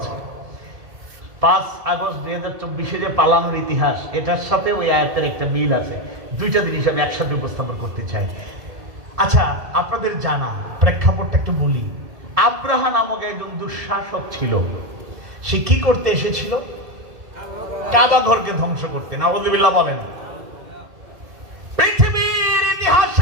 5 আগস্ট 2024 যে পালানোর ইতিহাস, এটার সাথে ওই আয়াতের একটা মিল আছে। দুইটা জিনিস আমি একসাথে উপস্থাপন করতে চাই। আচ্ছা, আপনাদের জানা প্রেক্ষাপটটা একটু বলি। আব্রাহা নামক একজন দুঃশাসক ছিল। সে কি করতে এসেছিল? কাবা ঘরকে ধ্বংস করতে। নাউযুবিল্লাহ বলেন। পৃথিবীর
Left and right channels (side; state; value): left; late; 1.7 ms